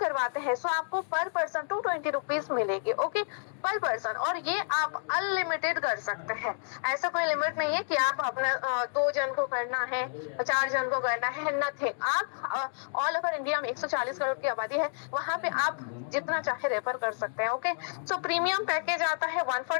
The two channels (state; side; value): silent; right; digital silence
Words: हैं तो आपको पर पर्सन 220 रुपीज मिलेगी। ओके, पर पर्सन, और ये आप अनलिमिटेड कर सकते हैं, ऐसा कोई लिमिट नहीं है कि आप अपना 2 जन को करना है, 4 जन को करना है, नथिंग। आप ऑल ओवर इंडिया में 140 करोड़ की आबादी है, वहां पे आप जितना चाहे रेफर कर सकते हैं। ओके, सो प्रीमियम पैकेज आता है